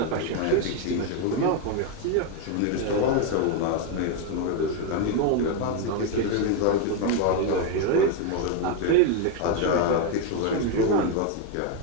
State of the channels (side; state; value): both; different; correlation 0.02